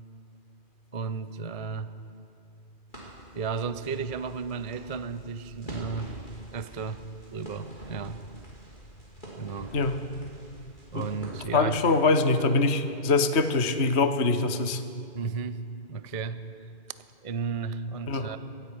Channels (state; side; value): late; right; 2.4 ms